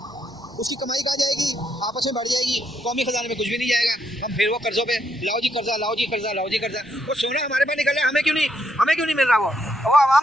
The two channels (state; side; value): normal; both; correlation 0.76